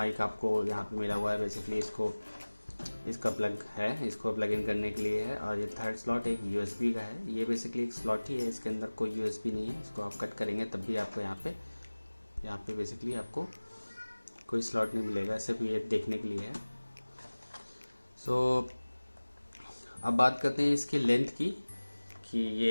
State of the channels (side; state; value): both; inverted; correlation -1.00